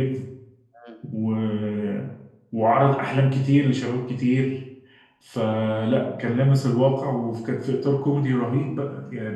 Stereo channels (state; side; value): identical; both; correlation 1.00